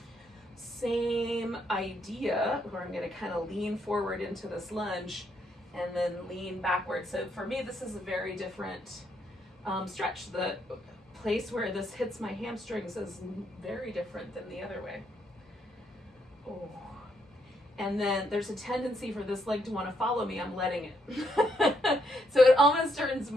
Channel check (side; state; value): both; normal; correlation 0.75